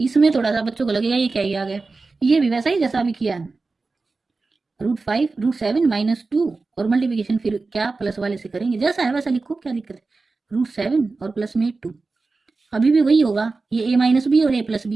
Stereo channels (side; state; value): left; quieter; 3.9 dB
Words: थोड़ा सा बच्चों को लगेगा ये क्या ही आ गया, ये भी वैसा ही जैसा अभी किया है, √5 √7 माइनस 2 और मल्टीप्लिकेशन फिर क्या प्लस वाले से करेंगे, जैसा है वैसा लिखो, क्या दिक्कत है। √7 और प्लस में 2, अभी भी वही होगा, ये a माइनस बी और a प्लस